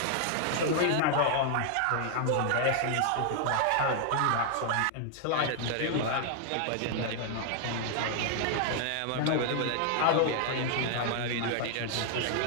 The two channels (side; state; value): both; different; correlation 0.00